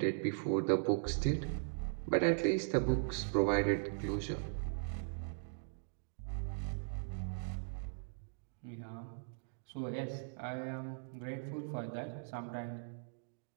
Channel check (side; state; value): left; silent; digital silence